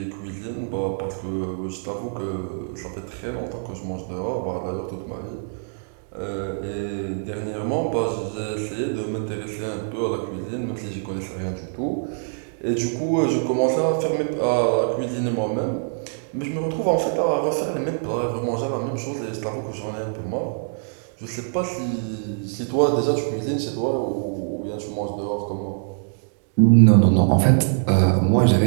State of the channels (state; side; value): silent; left; digital silence